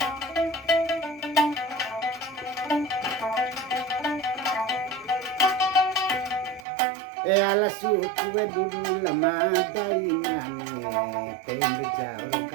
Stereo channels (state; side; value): drops out; left; at 6.7 s